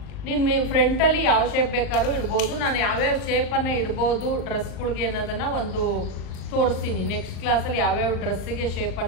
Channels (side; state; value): right; late; 39 ms